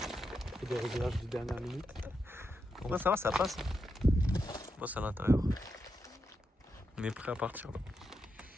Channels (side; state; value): both; normal; correlation 0.85